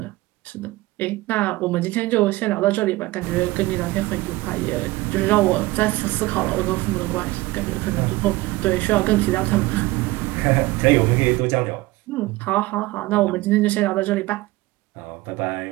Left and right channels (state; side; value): quieter; left; 19.6 dB